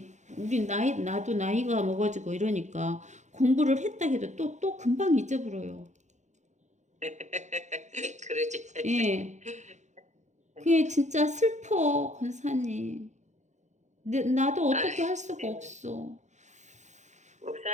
나도 나이가 먹어지고 이러니까 공부를 했다 해도 또 금방 잊어버려요. 그러지. 예. 그게 진짜 슬퍼, 권사님. 나도 어떻게 할 수가 없어.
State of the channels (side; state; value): left; late; 0.34 ms